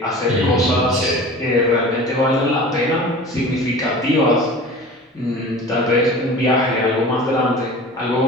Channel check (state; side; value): normal; both; correlation 0.39